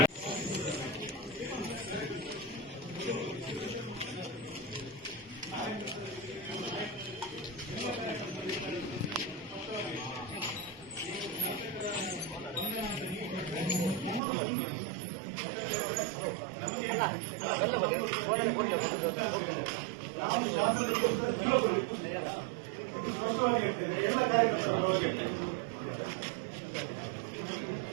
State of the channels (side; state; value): left; drops out; at 14.2 s